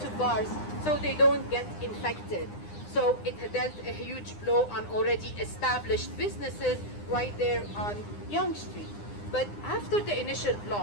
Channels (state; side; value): late; right; 9.8 ms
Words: bars so they don't get infected. So it dealt a huge blow on already established businesses right there on Yonge Street. But after the initial